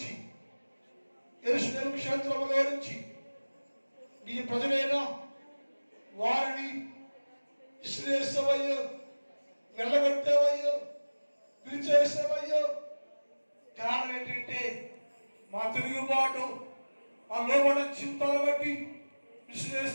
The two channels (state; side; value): inverted; both; correlation -1.00